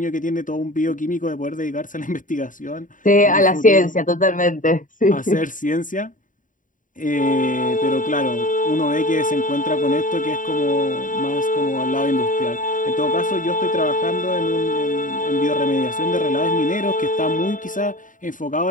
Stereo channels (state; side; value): late; right; 0.38 ms